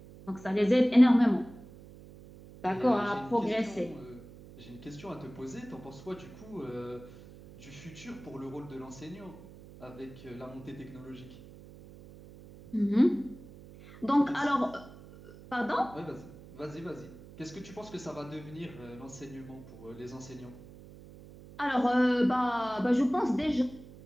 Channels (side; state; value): right; noise; hum, 18 dB below the sound